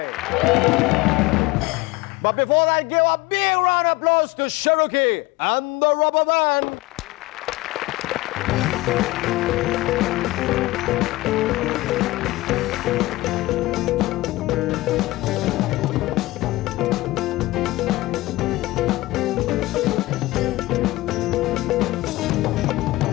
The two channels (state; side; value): quieter; right; 19.3 dB